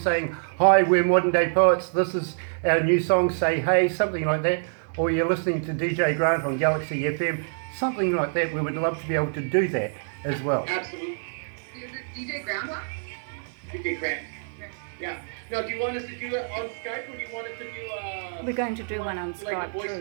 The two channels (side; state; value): left; silent; digital silence